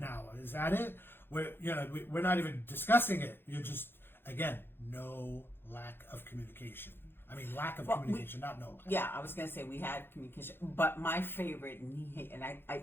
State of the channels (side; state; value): right; late; 0.10 ms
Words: Is that it? We're not even discussing it. You're just, again, no lack of communication. I mean, lack of Well, communication, not no. Yeah, I was gonna say we had communication, but my favorite, and